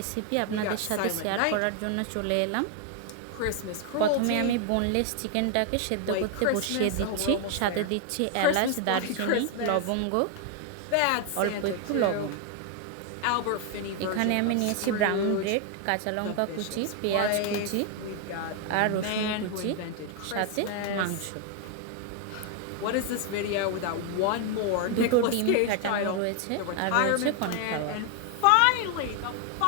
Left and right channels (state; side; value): different; both; correlation 0.01